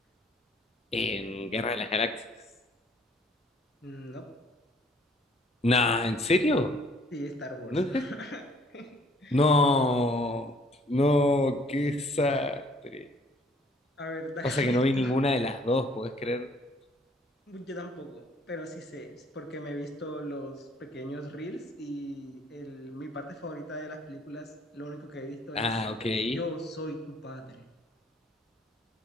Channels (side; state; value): both; normal; correlation 0.60